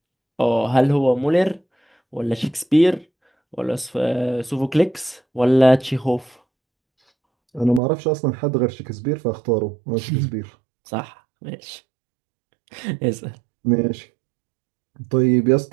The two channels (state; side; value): drops out; left; at 7.8 s